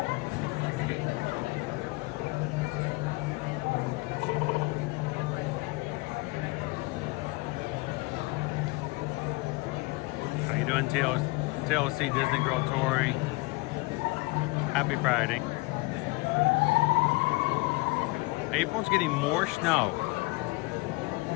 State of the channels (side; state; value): right; quieter; 24.7 dB